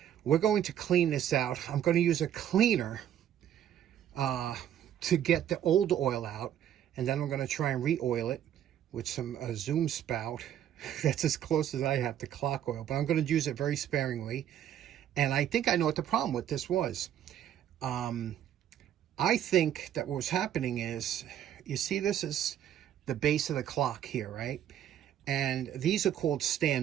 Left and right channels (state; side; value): quieter; left; 10.5 dB